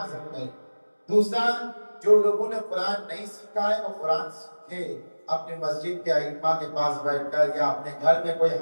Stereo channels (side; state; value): both; inverted; correlation -1.00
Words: عزم کرے. دوسرا، جو لوگوں نے قرآن نہیں سیکھا ہے وہ قرآن سیکھے. اپنے مسجد کے ائمہ کے پاس بیٹھ کر یا اپنے گھر میں کوئی